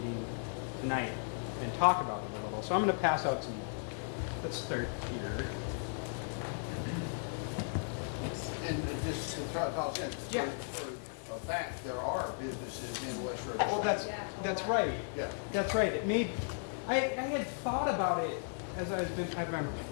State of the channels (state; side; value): silent; right; 54 dB below the other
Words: tonight and talk about it a little. So I'm going to pass out some, let's start here. And just to toss in, Yeah. for a fact, there are businesses in West Riverside. Well, that's lot. right. Yeah. That's right. I had thought about it as